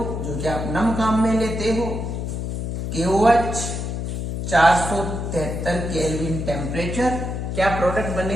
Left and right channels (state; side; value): noise; left; hum, 3 dB below the sound